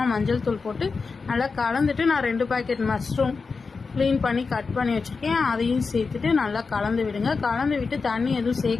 மஞ்சள் தூள் போட்டு நல்லா கலந்துட்டு நான் 2 பாக்கெட் மஷ்ரூம் க்ளீன் பண்ணி கட் பண்ணி வச்சுருக்கேன், அதையும் சேர்த்துட்டு நல்லா கலந்து விடுங்க. கலந்து விட்டு தண்ணி எதுவும்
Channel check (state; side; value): quieter; right; 4.6 dB